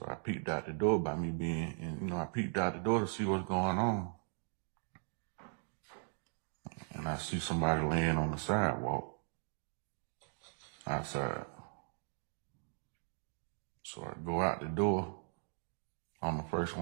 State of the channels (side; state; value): left; silent; digital silence